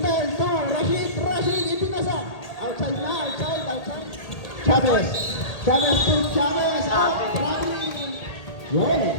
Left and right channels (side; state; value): right; late; 1.8 ms